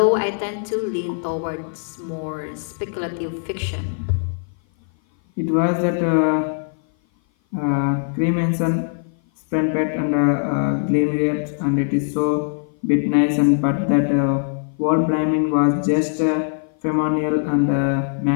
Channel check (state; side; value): silent; right; 57 dB below the other